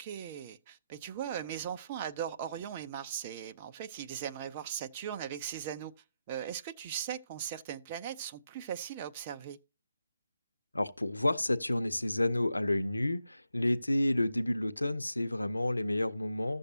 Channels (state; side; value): inverted; both; correlation -0.85